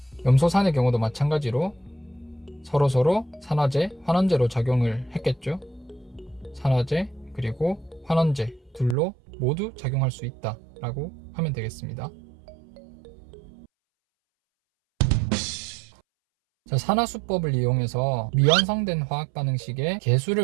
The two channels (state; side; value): drops out; left; at 9.0 s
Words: 염소산의 경우도 마찬가지로 서로서로 산화제, 환원제로 작용을 했겠죠. 산화제 그리고 환원제 둘로 모두 작용할 수 있다 라고 하면 되겠습니다. 자, 산화수법을 이용해서 미완성된 화학반응식의